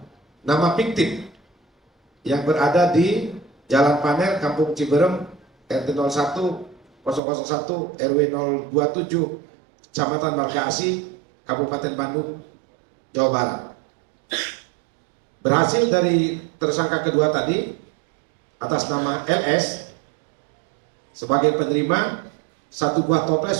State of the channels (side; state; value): left; drops out; at 7.2 s